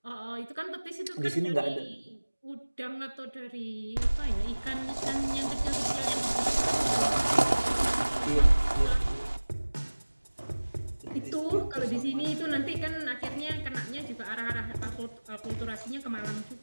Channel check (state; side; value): inverted; both; correlation -1.00